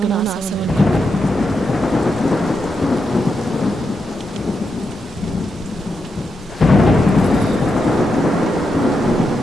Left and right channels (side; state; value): both; normal; correlation 0.85